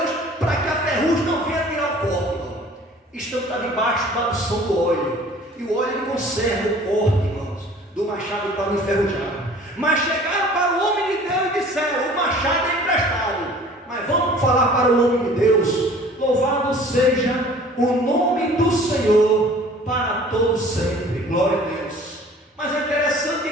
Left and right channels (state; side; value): normal; both; correlation 0.49